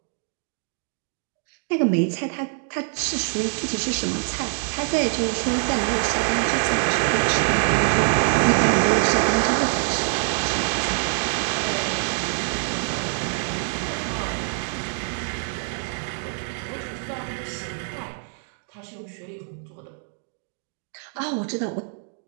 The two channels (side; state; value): left; silent; 56 dB below the other